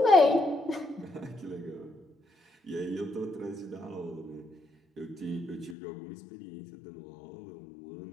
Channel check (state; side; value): drops out; right; at 5.8 s